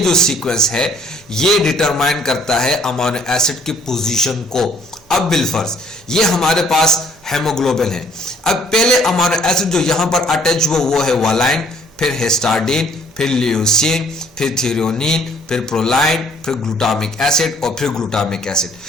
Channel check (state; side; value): normal; both; correlation 0.61